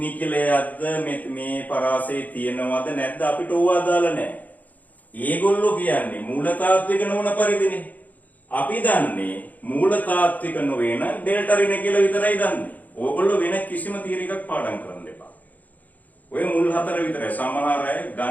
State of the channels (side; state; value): right; late; 0.079 ms